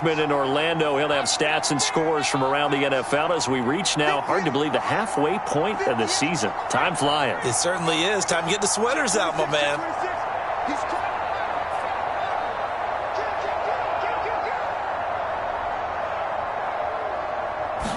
in Orlando. He'll have stats and scores from around the NFL as we reach now, hard to believe, the halfway point of the season. Time flying. It certainly is. Time to get the sweaters out, my man.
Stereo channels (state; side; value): identical; both; correlation 1.00